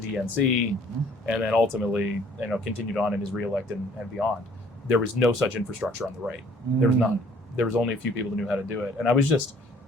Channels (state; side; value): normal; both; correlation 0.58